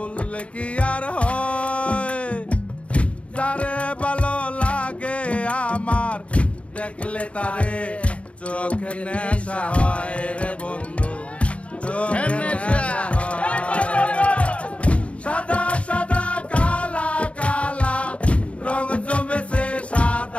কি আর হয়, যারে ভালো লাগে আমার দেখলে তারে চোখে নেশা হয় রে বন্ধু, চোখে নেশা হয়। সাদা সাদা কালা কালা রং জমেছে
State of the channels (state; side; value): late; right; 0.063 ms